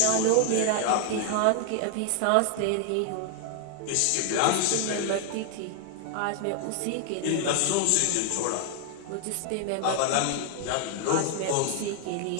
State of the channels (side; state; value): both; different; correlation 0.00